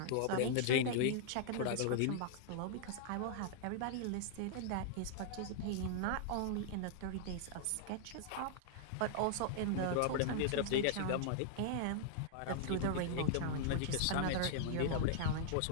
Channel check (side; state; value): both; different; correlation -0.01